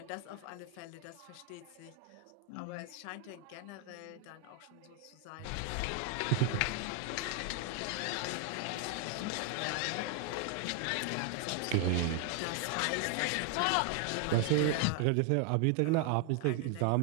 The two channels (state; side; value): different; both; correlation 0.00